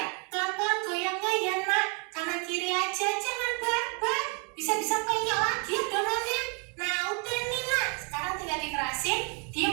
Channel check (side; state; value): left; quieter; 35.9 dB